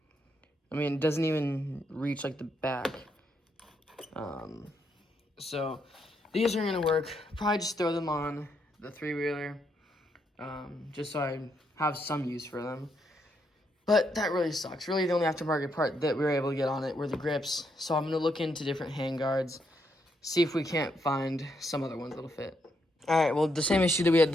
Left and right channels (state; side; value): normal; both; correlation 0.77